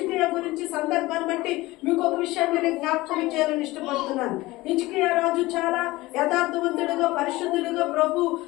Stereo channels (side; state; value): right; quieter; 19.7 dB